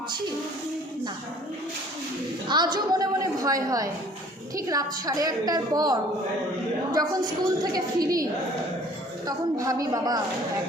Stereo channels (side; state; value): both; normal; correlation 0.53